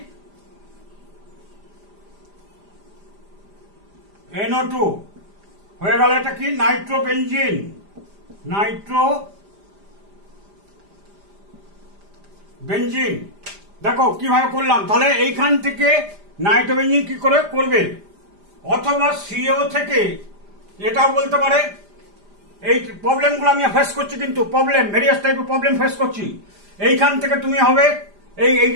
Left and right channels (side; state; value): left; late; 5.0 ms